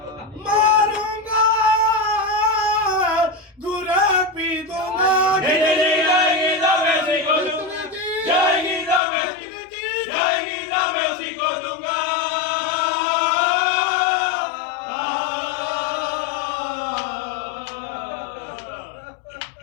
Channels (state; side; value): drops out; right; at 9.0 s